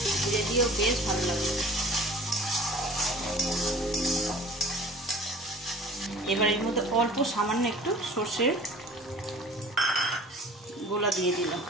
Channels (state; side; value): normal; both; correlation 0.45